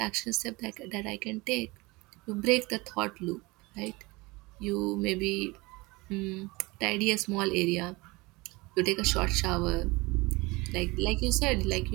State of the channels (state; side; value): quieter; left; 23.4 dB